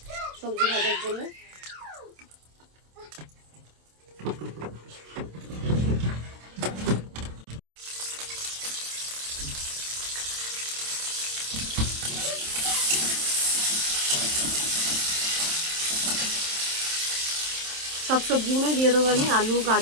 সবজি ভাজার জন্য। সব সবজিগুলোই দিয়ে দেবো আমি। আলু,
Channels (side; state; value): left; late; 27 ms